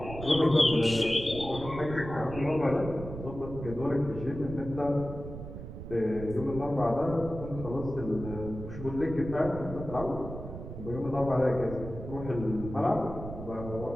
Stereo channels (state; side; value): noise; right; rumble, 10 dB below the sound